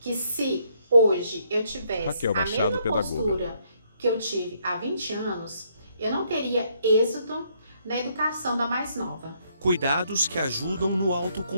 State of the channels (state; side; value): inverted; both; correlation -0.71